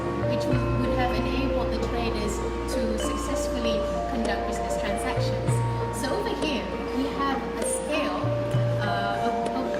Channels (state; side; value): identical; both; correlation 1.00